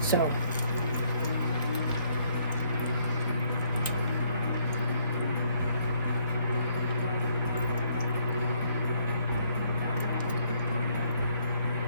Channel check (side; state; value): both; inverted; correlation -0.67